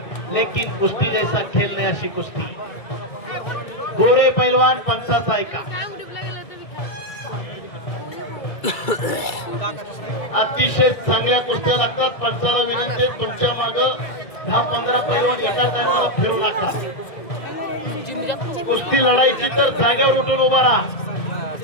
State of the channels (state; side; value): late; right; 1.6 ms